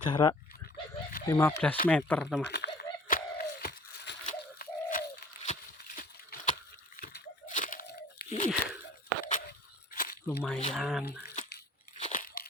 15 meter teman. Lumayan.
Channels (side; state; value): both; normal; correlation 0.49